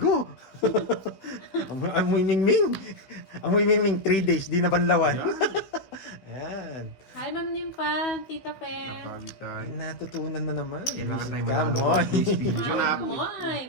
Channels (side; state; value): right; late; 16 ms